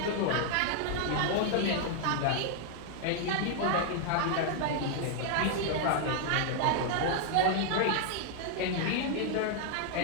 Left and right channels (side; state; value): both; different; correlation 0.00